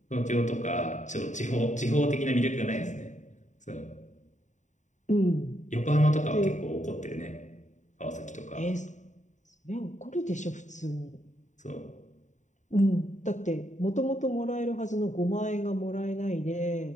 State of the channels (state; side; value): late; right; 0.35 ms